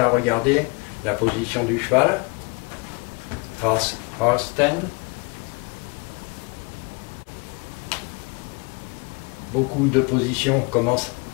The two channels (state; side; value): quieter; right; 30.2 dB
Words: regarder la position du cheval face cross stand. Beaucoup de positions commencent